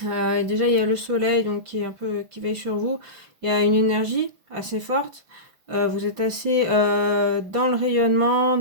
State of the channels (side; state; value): left; late; 5.8 ms